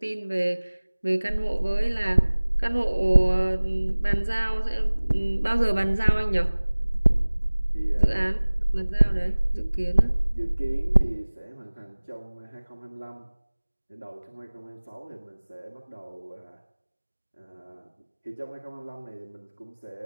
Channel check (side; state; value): both; inverted; correlation -1.00